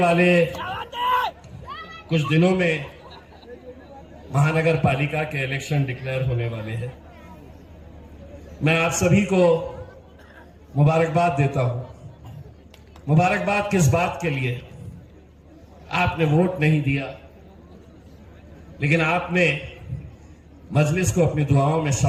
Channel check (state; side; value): identical; both; correlation 1.00